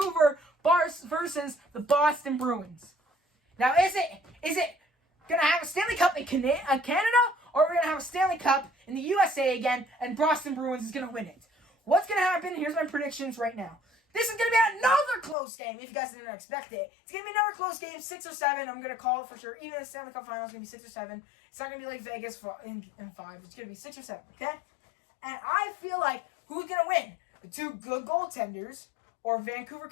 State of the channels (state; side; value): drops out; right; at 15.4 s